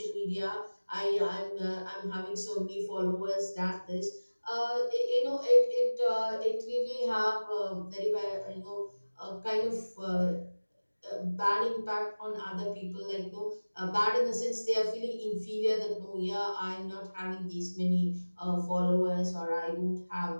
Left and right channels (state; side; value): inverted; both; correlation -1.00